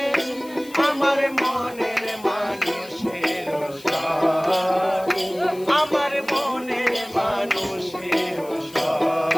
আমার মনের মানুষের সাথে, আমার মনের মানুষের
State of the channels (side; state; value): left; noise; hiss, 21 dB below the sound